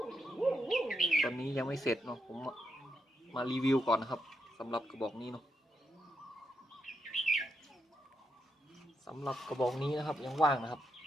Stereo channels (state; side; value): normal; both; correlation 0.81